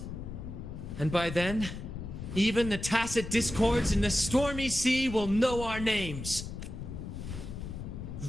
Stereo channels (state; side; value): noise; left; rumble, 8 dB below the sound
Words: And by then, even the tacit discords in the stormy sea will know our names.